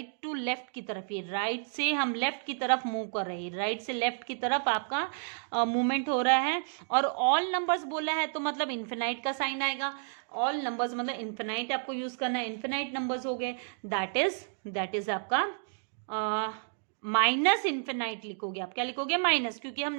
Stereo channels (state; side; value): silent; left; digital silence